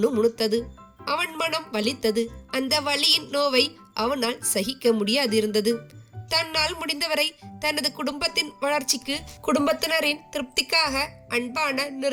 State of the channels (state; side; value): identical; both; correlation 1.00